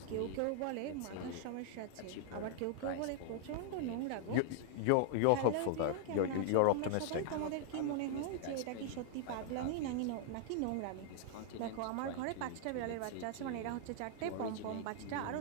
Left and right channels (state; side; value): different; both; correlation -0.01